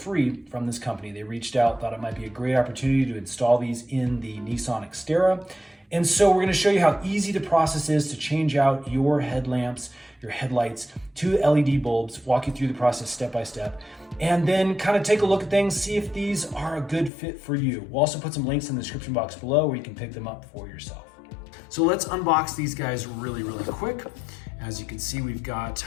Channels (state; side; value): drops out; right; at 17.1 s